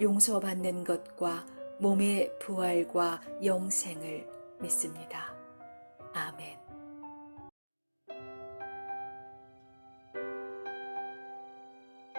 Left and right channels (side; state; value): both; inverted; correlation -1.00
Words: 용서받는 것과 몸의 부활과 영생을 믿습니다. 아멘.